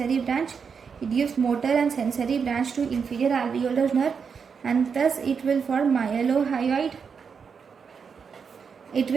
branch. It gives motor and sensory branch to inferior alveolar nerve, and thus it will form myelohyoid. It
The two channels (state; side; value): quieter; left; 6.1 dB